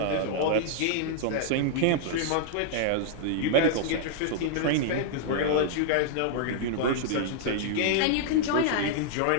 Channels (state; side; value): different; both; correlation -0.01